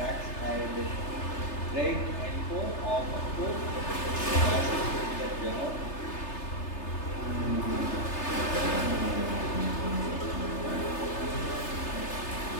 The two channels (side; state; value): right; late; 3.3 ms